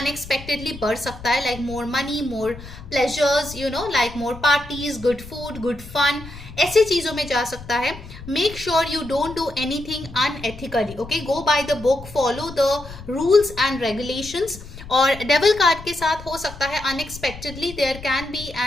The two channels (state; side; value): noise; left; rumble, 15 dB below the sound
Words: बढ़ सकता है, like more money, more pleasures, you know, like more parties, good food, good fun, ऐसी चीजों में जा सकता है। Make sure you don't do anything unethically. Okay, go by the book, follow the rules and regulations. और डेविल कार्ड के साथ हो सकता है unexpectedly there can be